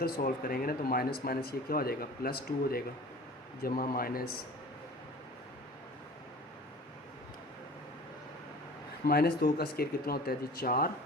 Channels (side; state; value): both; normal; correlation 0.42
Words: सॉल्व करेंगे ना तो माइनस माइनस ये क्या हो जाएगा, +2 हो जाएगा, जमा -2 का स्क्वायर कितना होता है जी 4,